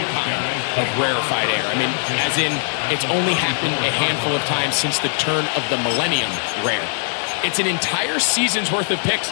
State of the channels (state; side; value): silent; right; digital silence